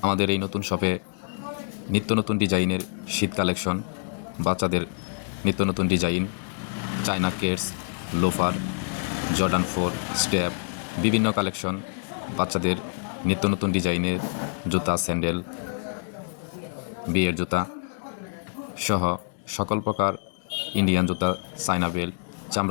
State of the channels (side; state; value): right; silent; digital silence